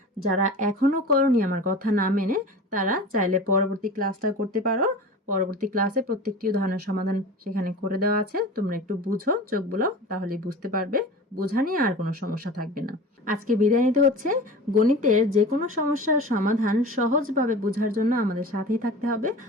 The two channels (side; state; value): both; normal; correlation 0.35